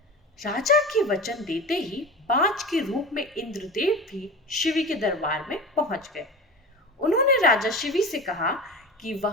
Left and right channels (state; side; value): normal; both; correlation 0.31